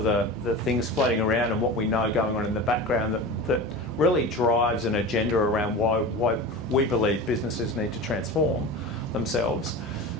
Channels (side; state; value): both; normal; correlation 0.31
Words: the things floating around and what we know going on in the background that really drives an agenda around why we believe businesses need to transform themselves,